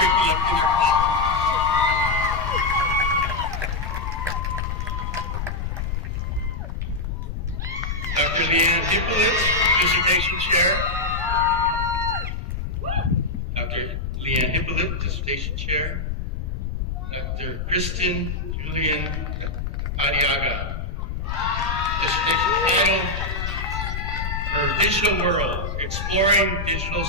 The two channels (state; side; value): noise; left; rumble, 4 dB below the sound